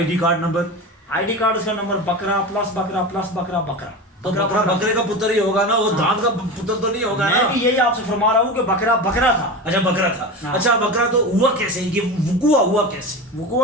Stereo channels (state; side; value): normal; both; correlation 0.26